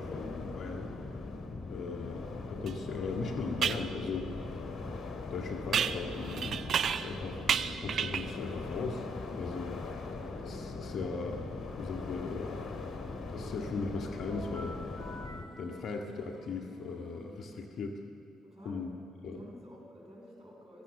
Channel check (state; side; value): normal; both; correlation 0.69